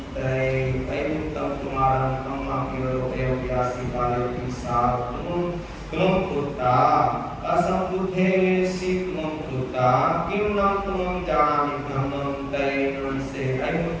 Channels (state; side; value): identical; both; correlation 1.00